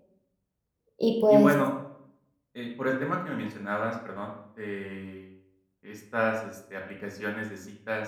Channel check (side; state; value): both; identical; correlation 1.00